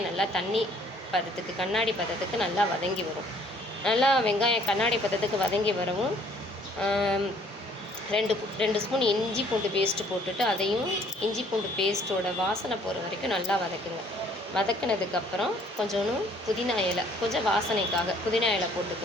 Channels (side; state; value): both; normal; correlation 0.60